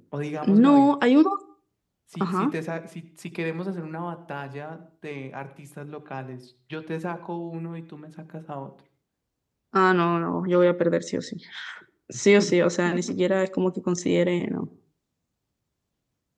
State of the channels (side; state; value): both; identical; correlation 1.00